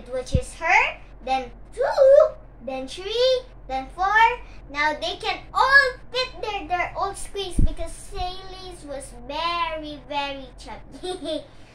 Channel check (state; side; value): identical; both; correlation 1.00